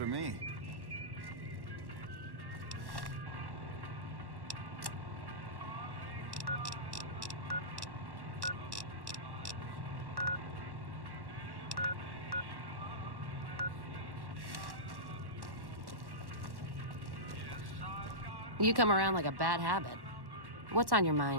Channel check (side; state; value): left; late; 1.1 ms